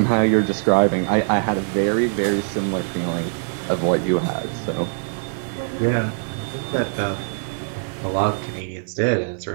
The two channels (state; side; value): silent; left; 64 dB below the other